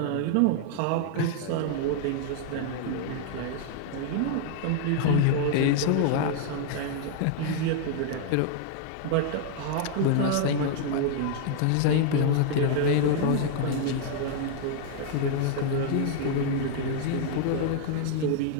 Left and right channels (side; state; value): both; different; correlation 0.00